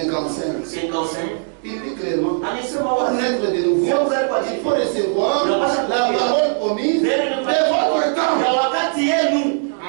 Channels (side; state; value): left; silent; digital silence